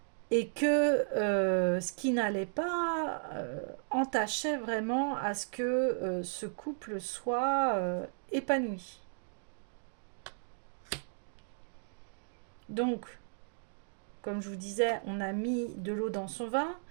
Et que ce qui n'allait pas entachait vraiment à ce que ce couple soit épanoui. Donc, comme je vous disais, on a mis de l'eau dans son vin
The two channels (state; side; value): silent; left; digital silence